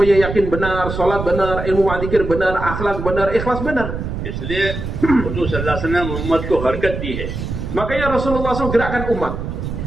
yakin benar, salat benar, ilmu wa dzikir benar, akhlak benar, ikhlas benar. इसलिए हुजूर सल्लल्लाहु अलैहि वसल्लम उम्मत को हरकत दी है. Makanya Rasulullah SAW gerakkan umat,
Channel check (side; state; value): right; noise; rumble, 5 dB below the sound